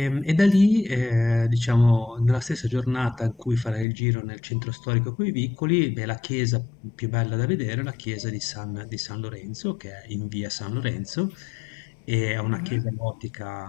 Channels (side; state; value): right; drops out; at 3.9 s